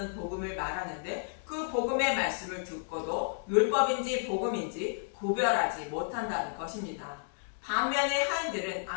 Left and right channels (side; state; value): right; silent; digital silence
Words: 복음을 말하는데 그 복음의 말씀을 듣고도 율법인지 복음인지 구별하지 못한다는 것입니다. 반면에 하인들은